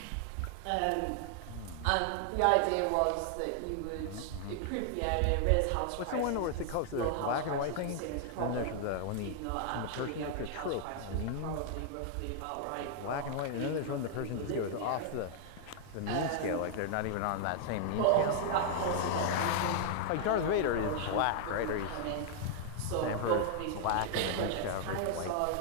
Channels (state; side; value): different; both; correlation 0.00